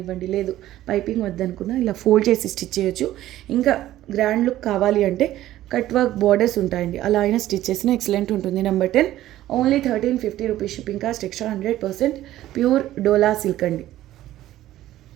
లేదు పైపింగ్ వద్దనుకున్నా ఇలా ఫోల్డ్ చేసి స్టిచ్ చేయొచ్చు. ఇంకా గ్రాండ్ లుక్ కావాలి అంటే కట్ వర్క్ బార్డర్స్ ఉంటాయండి, అలా అయినా స్టిచ్ చేసిన ఎక్సలెంట్ ఉంటుంది. Number 10 only 1350 rupees. Shipping cost extra. 100% pure Dola silk అండి.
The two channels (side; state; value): left; quieter; 14.1 dB